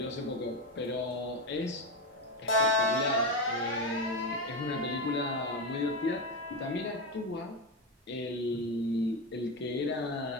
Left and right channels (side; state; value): both; normal; correlation 0.14